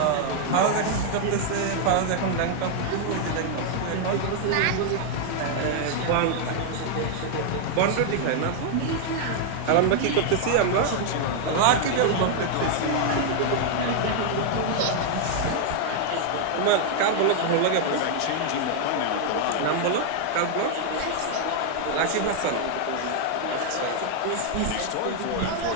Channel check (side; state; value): both; different; correlation 0.00